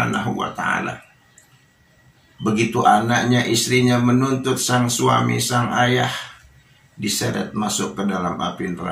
wa ta'ala. Begitu anaknya, istrinya menuntut sang suami, sang ayah, diseret masuk ke dalam api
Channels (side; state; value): both; identical; correlation 1.00